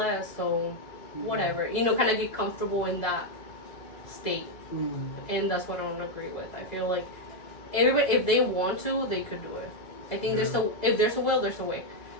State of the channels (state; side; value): late; right; 2.0 ms